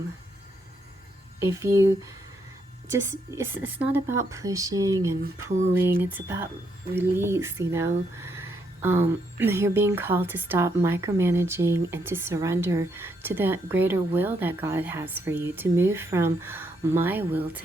If you just, it's not about pushing and pulling, it's about release, you know. You're being called to stop micromanaging and to surrender to that greater will that God has for you, to move from my will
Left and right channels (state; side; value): normal; both; correlation 0.76